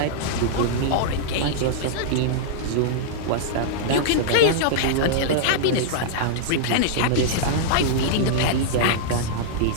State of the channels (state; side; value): different; both; correlation -0.02